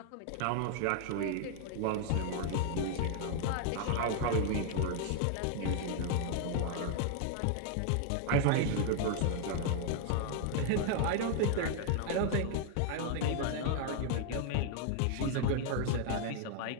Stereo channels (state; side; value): different; both; correlation 0.00